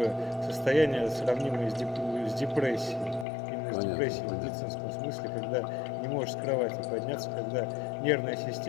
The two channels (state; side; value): drops out; right; at 3.2 s